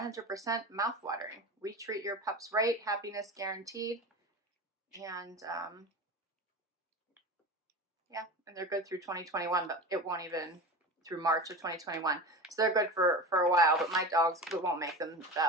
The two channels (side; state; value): both; normal; correlation 0.29